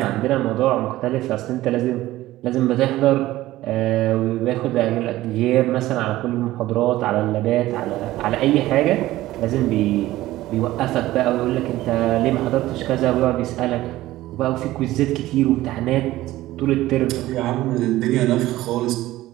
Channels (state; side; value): quieter; left; 16.2 dB